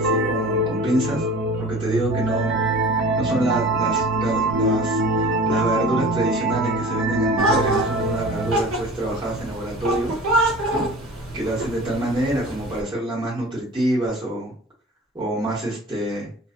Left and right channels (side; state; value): both; normal; correlation 0.40